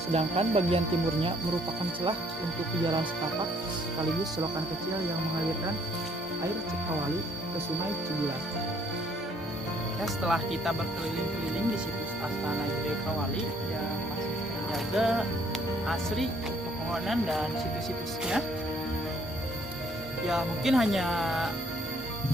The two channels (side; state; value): both; normal; correlation 0.64